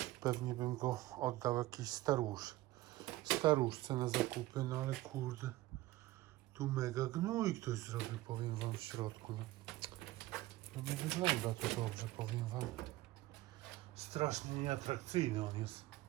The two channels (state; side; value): quieter; left; 17.2 dB